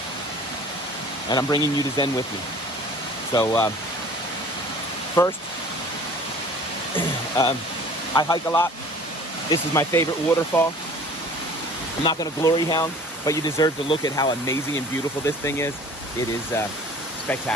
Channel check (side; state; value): both; normal; correlation 0.47